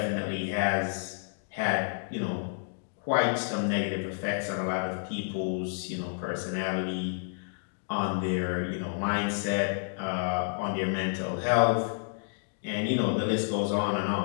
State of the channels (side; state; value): right; silent; digital silence